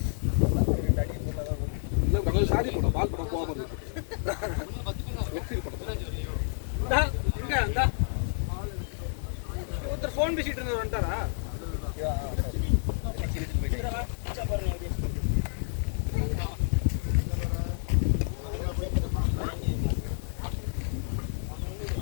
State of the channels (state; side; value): silent; right; digital silence